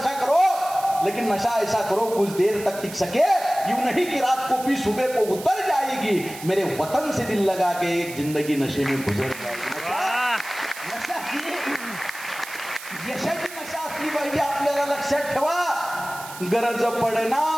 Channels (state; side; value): noise; right; hiss, 14 dB below the sound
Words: करो, लेकिन नशा ऐसा करो कुछ देर तक टिक सके. यूं नहीं कि रात को पी सुबह को उतर जाएगी, मेरे वतन से दिल लगा के एक जिंदगी नशे में गुजर जाएगी. नशा ही यशाची नशा असली पाहिजे आपल्याला. लक्षात ठेवा. गरज